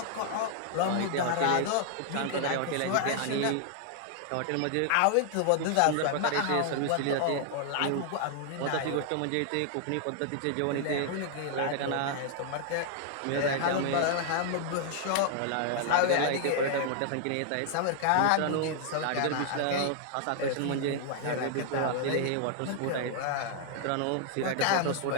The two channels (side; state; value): both; different; correlation 0.00